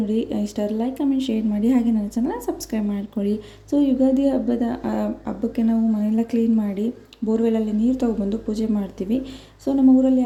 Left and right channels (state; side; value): identical; both; correlation 1.00